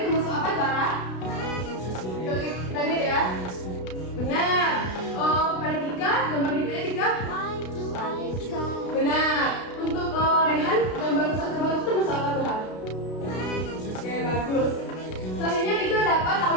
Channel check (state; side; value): late; right; 32 ms